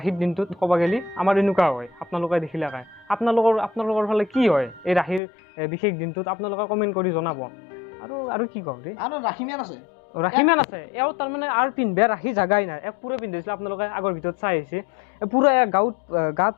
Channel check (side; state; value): right; drops out; at 5.2 s